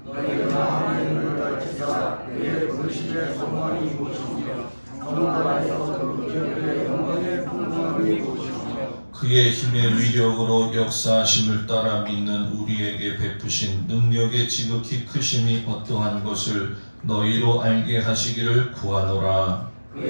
너희 마음의 눈을 밝히사 그의 불신의 소망이 무엇이며 성도 안에서 그 기업의 영광의 풍성함이 무엇이며 그의 힘의 위력으로 역사하심을 따라 믿는 우리에게 베푸신 능력의 지극히 크심이 어떠한 것을 너희로 알게 하시기를 구하노라.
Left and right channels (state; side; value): inverted; both; correlation -1.00